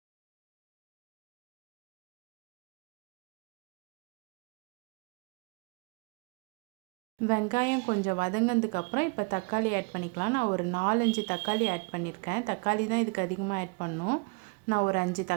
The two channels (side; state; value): left; quieter; 31.0 dB